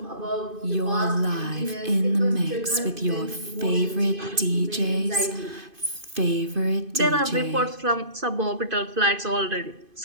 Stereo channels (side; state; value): left; late; 2.5 ms